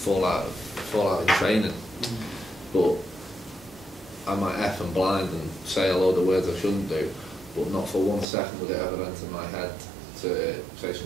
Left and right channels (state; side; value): drops out; left; at 8.2 s